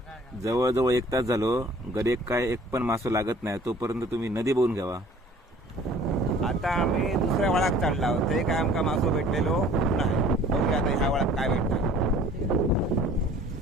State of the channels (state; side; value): normal; both; correlation 0.51